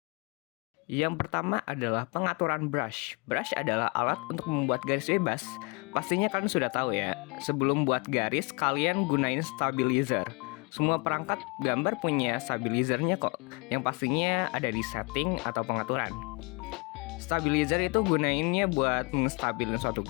Yang pertama adalah pengaturan brush. Brush adalah alat untuk membuat garis bebas. Pastinya kalian sudah tahu ya, sebelum buat garis kalian gunain stabilizer. Semua perangkat gambar punya stabilizernya kok, yang pastinya ada di setting atau pengaturan. Stabilizer itu gunainnya buat mengstabilin suatu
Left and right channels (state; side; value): quieter; right; 30.6 dB